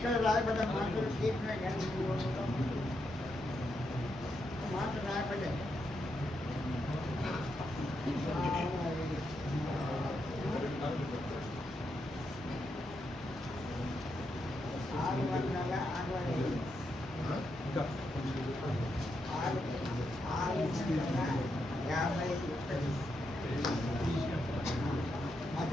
రాయబడ్డ మాటలు తీర్చిన కానీ మాట రాయబడ్డాయి.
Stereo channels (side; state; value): both; normal; correlation 0.82